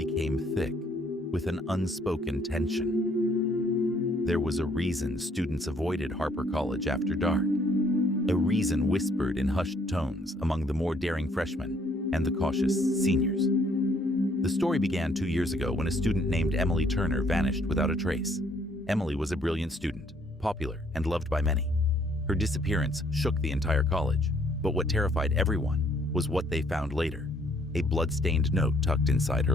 thick with an unspoken tension. There was a reason students avoided Harper College after dark, a reason whispered in hushed tones among the more daring freshmen and the cautious seniors. The story began 2 years ago when a student named Emily Turner vanished without a trace. Emily was a brilliant student, popular and loved by many. Her disappearance shook the entire college, but what terrified everyone was what they found later, a blood-stained note tucked inside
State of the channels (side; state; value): both; normal; correlation 0.65